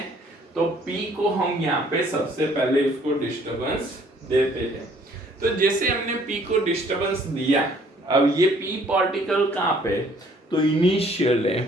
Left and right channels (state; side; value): normal; both; correlation 0.60